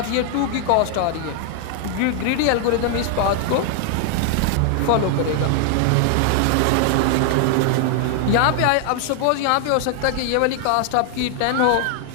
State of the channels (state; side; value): different; both; correlation 0.00